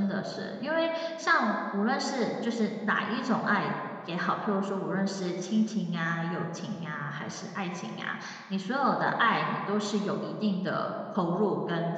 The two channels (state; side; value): identical; both; correlation 1.00